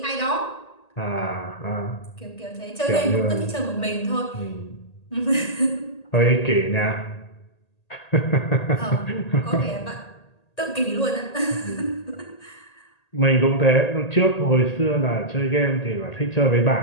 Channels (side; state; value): right; late; 1.8 ms